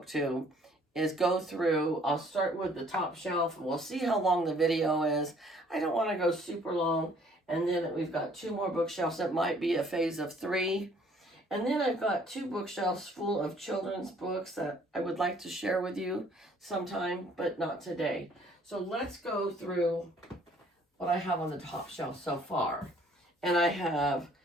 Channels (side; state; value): both; normal; correlation 0.59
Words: is go through. I'll start with the top shelf and we'll see how long the video is. I don't want to go super long. And then we've got 2 more bookshelves. That might be a phase of 3. And then I've got 2 bookshelves full of children's books that I would like to share with you sometime, but not today. So let's go through what I have on the top shelf so far. And I have